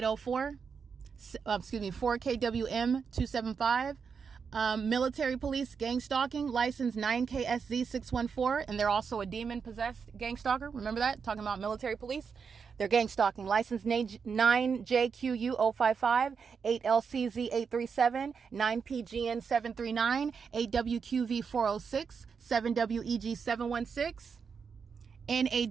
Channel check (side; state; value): left; quieter; 6.0 dB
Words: 4KWM275, Military police gang stalking, license 9KSZ614, and they're also a demon-possessed gang stalker. Remember that? Talking about military police. They're gang stalking. License 9JQU055, 8LCZ837, 9PGN739, 8WQV406, 7WEG716,